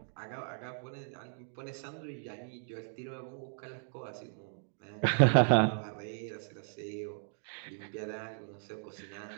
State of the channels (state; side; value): silent; left; digital silence